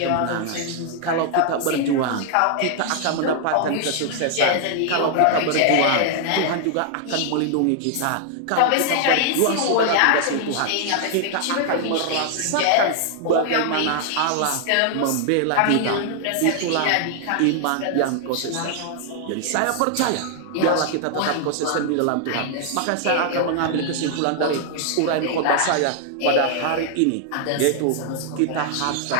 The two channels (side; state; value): both; different; correlation 0.00